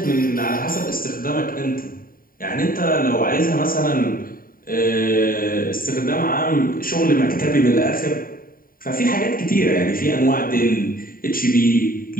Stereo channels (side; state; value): right; late; 0.41 ms